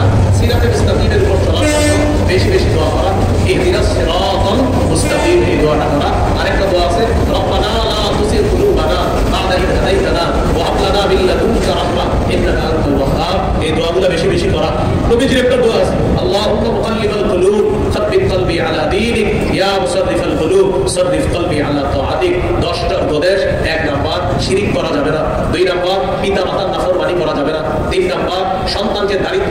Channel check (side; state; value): both; identical; correlation 1.00